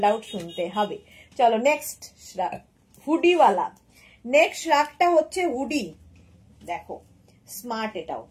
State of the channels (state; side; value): identical; both; correlation 1.00